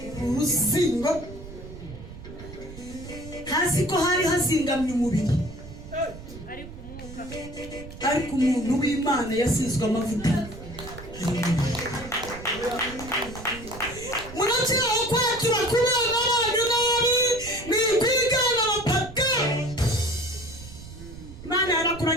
uruzingo hasi ko hari hazingamye umubiri ariko umuntu w'Imana yasizwe amavuta. Munakiraho kwakira kubana n'abantu nabi ni kwigana abapaka. Imana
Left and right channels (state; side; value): noise; right; rumble, 14 dB below the sound